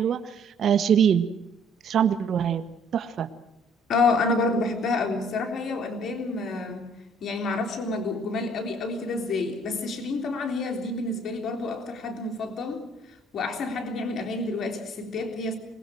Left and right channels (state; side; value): normal; both; correlation 0.59